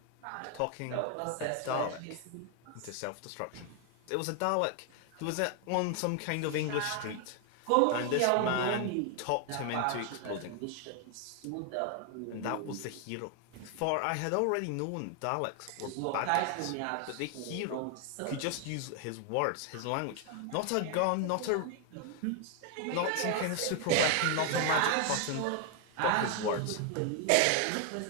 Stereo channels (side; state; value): both; different; correlation 0.01